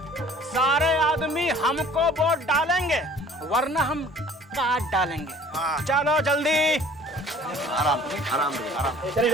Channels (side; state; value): both; normal; correlation 0.51